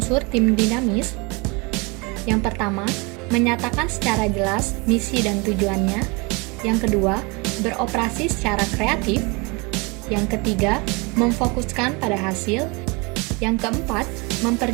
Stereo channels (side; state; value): left; quieter; 28.4 dB